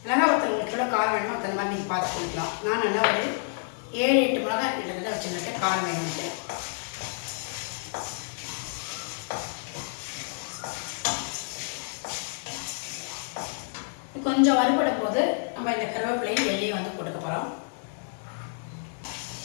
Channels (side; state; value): right; silent; 59 dB below the other